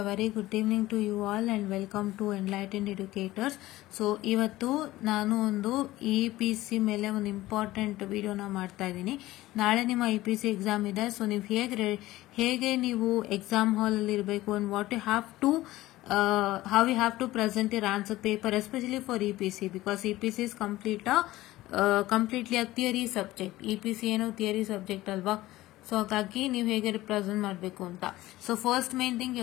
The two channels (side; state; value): right; quieter; 17.0 dB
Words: very good evening to you all and welcome to Enlightened Educators. So ಇವತ್ತು ನಾನು ಒಂದು EPC ಮೇಲೆ ಒಂದು important ವಿಡಿಯೋನ ಮಾಡ್ತಾ ಇದ್ದೀನಿ. ನಾಳೆ ನಿಮ್ಮ EPC ಎಕ್ಸಾಮ್ ಇದೆ. ಸೊ ನೀವು ಹೇಗೆ ನೀವು ಎಕ್ಸಾಮ್ ಹಾಲ್ ಅಲ್ಲಿ ಇರಬೇಕು and what you have to how you have to present your answer paper, especially for EPC, because EPC is completely a theory subject. EPC ಏನು theory subject ಅಲ್ವಾ. So ಹಾಗಾಗಿ ನೀವು ಹೇಗೆ ರಿಪ್ರೆಸೆಂಟ್ ಮಾಡಬೇಕು ಅಂತ. So first main thing